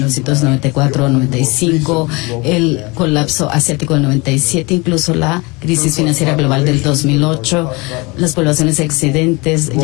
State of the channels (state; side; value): quieter; right; 26.2 dB